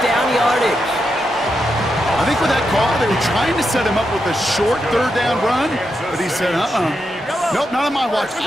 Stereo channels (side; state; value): both; normal; correlation 0.85